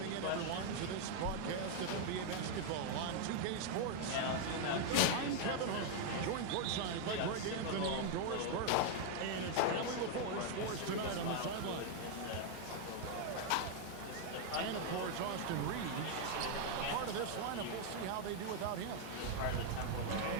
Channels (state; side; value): different; both; correlation 0.00